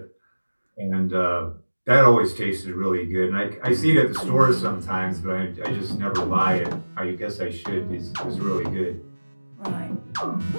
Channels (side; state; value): both; inverted; correlation -1.00